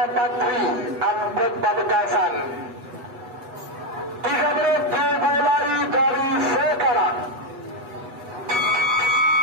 Patri Ampet Pamekasan. 3 menit dimulai dari sekarang.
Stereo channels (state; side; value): late; left; 8.0 ms